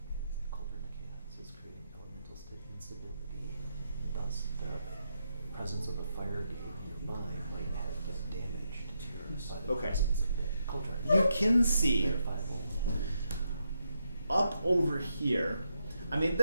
is the colder mechanics is creating elemental instability, and thus the presence of a fire gate nearby might have damage to your by the Okay. presence of the cauldron. You can see Verifiable. up over here. I mean,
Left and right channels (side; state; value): both; inverted; correlation -0.81